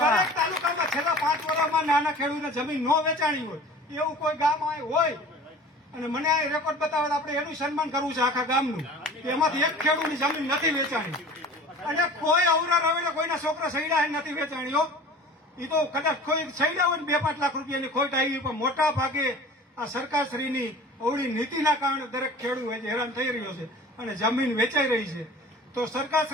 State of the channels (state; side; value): normal; both; correlation 0.42